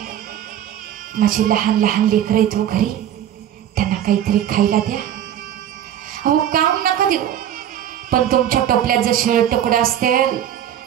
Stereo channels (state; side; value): quieter; left; 10.7 dB